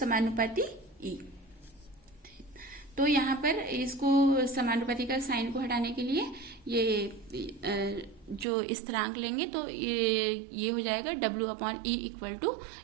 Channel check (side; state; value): left; drops out; at 8.5 s